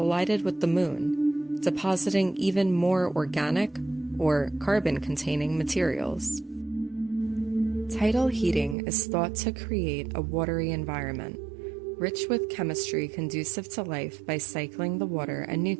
with the moon, depositing even more organic or carbon-containing materials. Tidal heating is thought to create a watery environment, rich with chemistry conducive to life by cycling the water and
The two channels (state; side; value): drops out; left; at 8.8 s